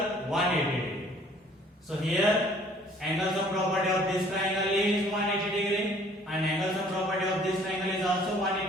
180 degree. So here angle sum property of this triangle is 180 degree and angle sum property of this triangle is also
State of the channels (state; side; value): normal; both; correlation 0.57